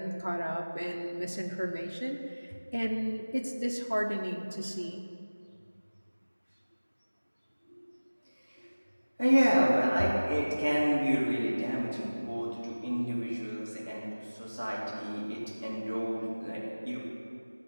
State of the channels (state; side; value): inverted; both; correlation -1.00